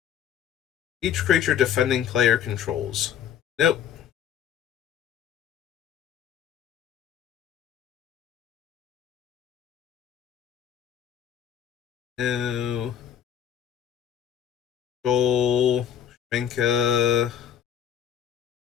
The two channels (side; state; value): right; quieter; 9.3 dB